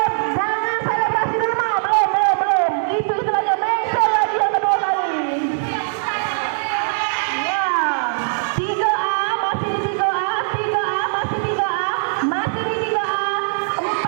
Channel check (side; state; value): left; silent; digital silence